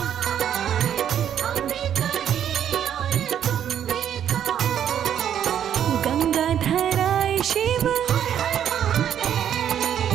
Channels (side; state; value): left; quieter; 9.6 dB